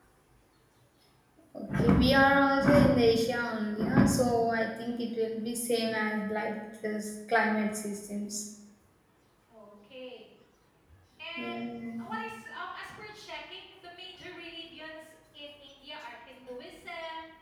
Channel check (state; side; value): identical; both; correlation 1.00